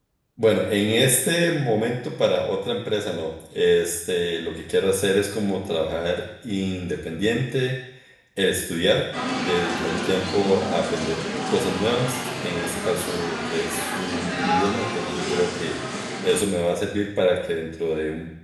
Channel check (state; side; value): identical; both; correlation 1.00